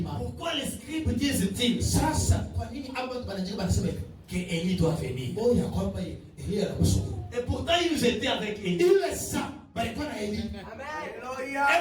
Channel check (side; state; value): both; identical; correlation 1.00